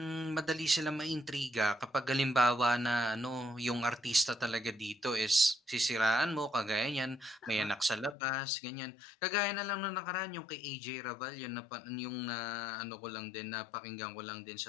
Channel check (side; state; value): right; drops out; at 8.2 s